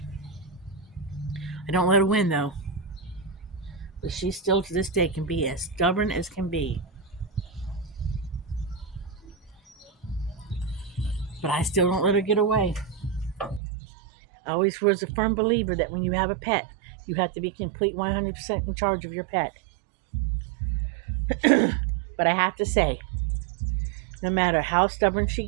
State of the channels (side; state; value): left; drops out; at 13.6 s